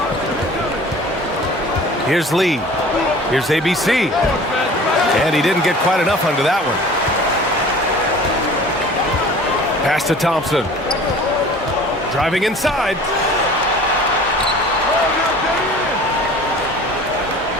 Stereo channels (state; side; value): normal; both; correlation 0.44